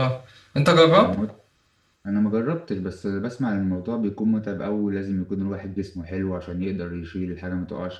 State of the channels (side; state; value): both; identical; correlation 1.00